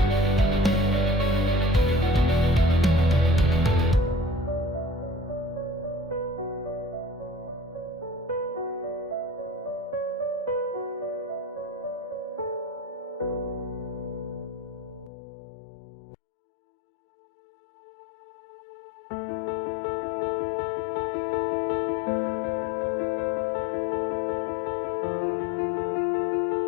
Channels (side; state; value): right; drops out; at 15.1 s